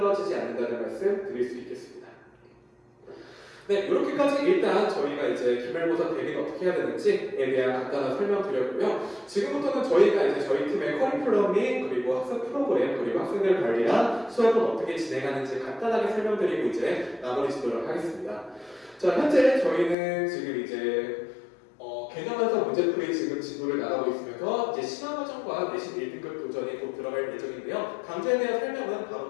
않는다는 말씀 드릴 수 있겠습니다. 네, 이렇게까지 일단 저희가 이제 기말고사 대비는 어떻게 해야 되는지에 대한 간단한 설명 드렸고요. 지금부터는 저희가 이제 저희 팀의 커리큘럼이 그리고 학습 프로그램 그리고 학생들 관리랑 수업은 어떻게 진행하는지 간단하게 설명드리고 이제 마무리 짓도록 하겠습니다. 자, 현재 저희는 지금 이제 개념에서 문제풀이 지금 진도를 나가고 있으면서 이제 심화과정과 내신 1등급 도전이 곧 들어갈 예정인데요. 강좌에 대한 설명은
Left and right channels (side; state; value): right; drops out; at 20.0 s